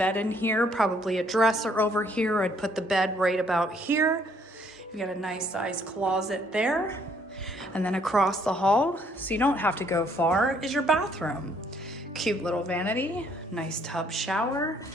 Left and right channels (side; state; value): both; normal; correlation 0.66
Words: in here, probably a dresser over here. I'd put the bed right about here. You've got a nice size closet there. And then across the hall, so you don't have to go far, is your bathroom. Cute little vanity, nice tub shower,